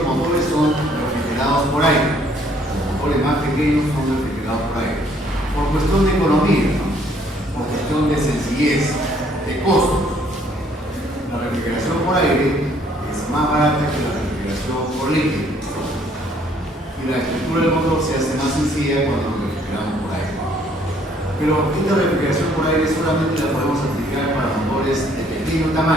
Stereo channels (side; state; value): both; normal; correlation 0.63